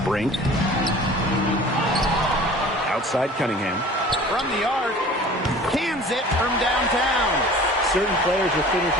Brink. Outside Cunningham. From the arc. Cans it from downtown. Certain players are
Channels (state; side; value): normal; both; correlation 0.44